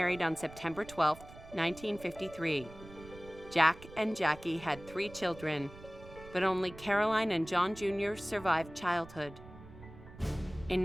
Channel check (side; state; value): right; noise; rumble, 17 dB below the sound